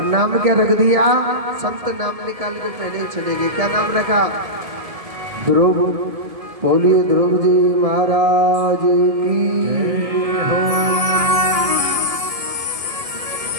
नाम क्या रख दिया? संत नाम निकाल के पहले ही चले गए। क्या नाम रखा? ध्रुव। बोलिए ध्रुव जी महाराज की हो।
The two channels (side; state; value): left; late; 1.7 ms